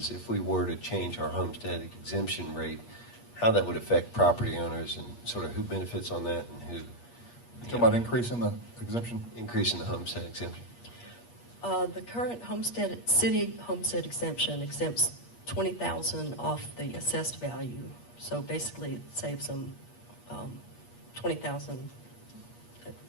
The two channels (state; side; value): late; right; 8.4 ms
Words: if we were to change our homestead exemption rate, how that would affect property owners and sort of who benefits on that and who Talking about increasing the exemption? increasing the homestead exemption? The current city homestead exemption exempts $20,000 off the assessed value. So basically, it saves them $20,000.